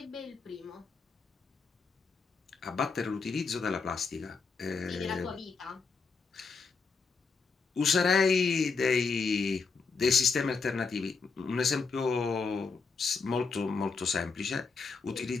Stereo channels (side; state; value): right; quieter; 4.7 dB